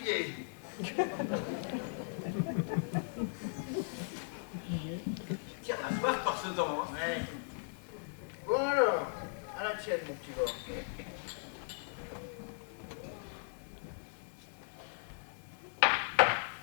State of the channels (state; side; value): silent; right; digital silence